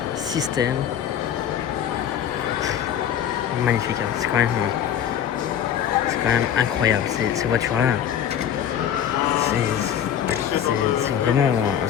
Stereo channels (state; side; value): quieter; right; 9.5 dB